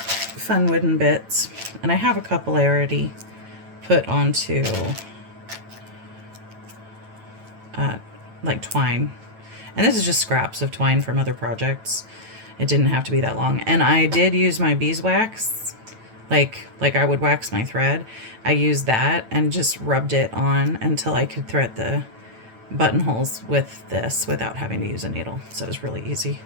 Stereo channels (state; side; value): late; left; 9.0 ms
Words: wooden bits, and I have a couple already put onto like twine, and this is just scraps of twine from other projects. It didn't have to be that long, and I did use my beeswax, like I would wax my thread. I used that and just rubbed it on until I could thread the buttonholes with this without having to use a needle. So it was really easy.